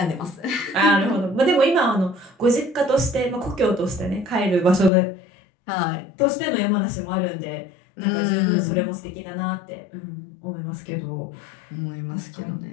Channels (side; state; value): right; drops out; at 4.9 s